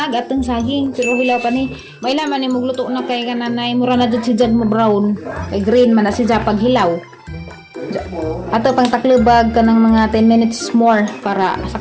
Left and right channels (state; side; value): identical; both; correlation 1.00